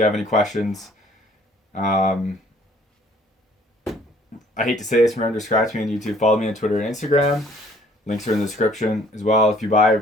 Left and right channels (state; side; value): normal; both; correlation 0.58